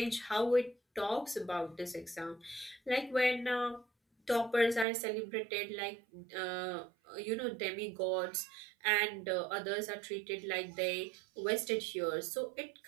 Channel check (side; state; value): left; drops out; at 4.9 s